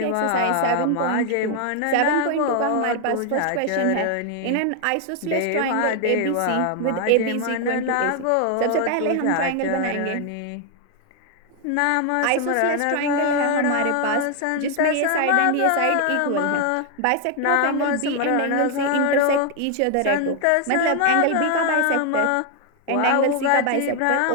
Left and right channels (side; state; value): both; different; correlation 0.01